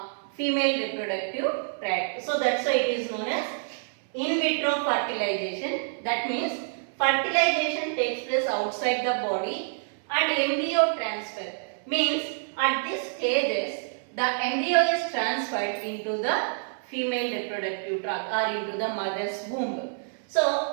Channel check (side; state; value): left; silent; 60 dB below the other